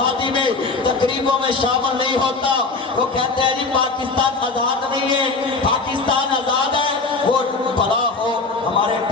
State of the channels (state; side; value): quieter; right; 4.0 dB